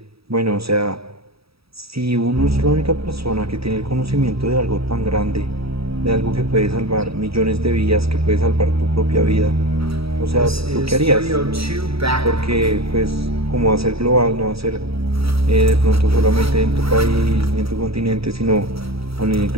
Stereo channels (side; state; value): left; late; 0.77 ms